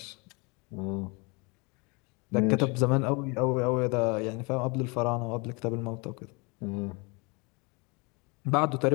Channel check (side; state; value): right; quieter; 29.6 dB